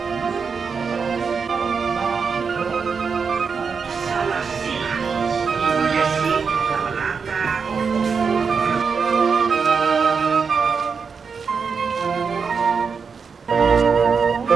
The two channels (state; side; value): quieter; left; 5.6 dB